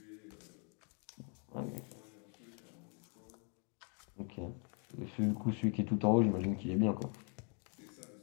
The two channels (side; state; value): right; quieter; 38.4 dB